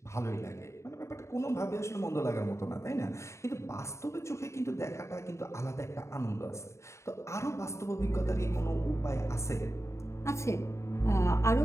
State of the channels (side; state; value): right; late; 0.14 ms